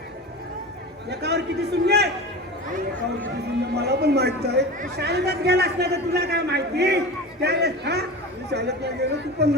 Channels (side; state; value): both; normal; correlation 0.30